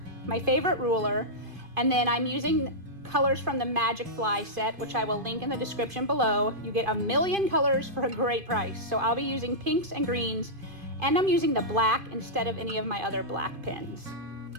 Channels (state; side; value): late; left; 2.5 ms